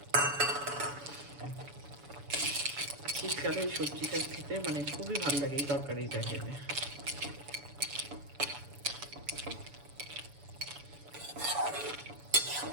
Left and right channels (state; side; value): late; left; 7.0 ms